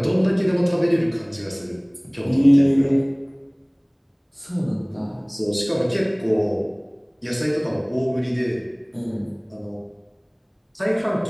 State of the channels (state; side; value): identical; both; correlation 1.00